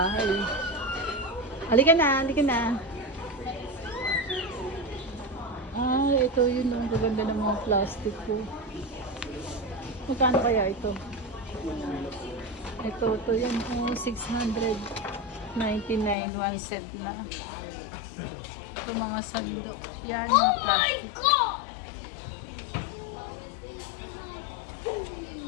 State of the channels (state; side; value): drops out; right; at 16.2 s